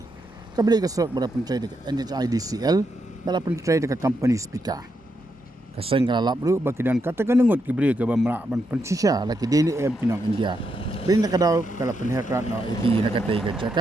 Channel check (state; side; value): normal; both; correlation 0.81